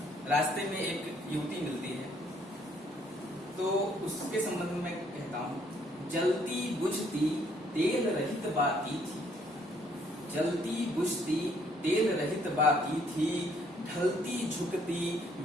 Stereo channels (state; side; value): normal; both; correlation 0.66